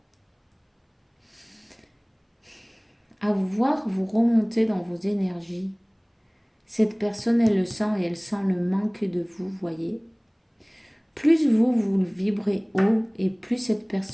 à vous voir, vous remonter dans vos énergies. Cette personne, elle le sent et elle sent le manque de vous, voyez. Plus vous vibrez haut et plus cette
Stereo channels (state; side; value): identical; both; correlation 1.00